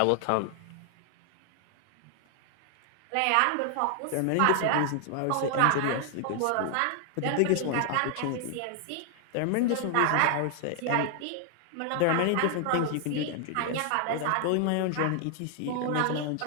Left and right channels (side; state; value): both; different; correlation 0.00